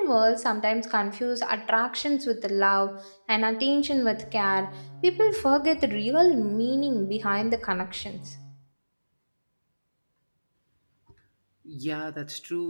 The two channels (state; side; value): inverted; both; correlation -1.00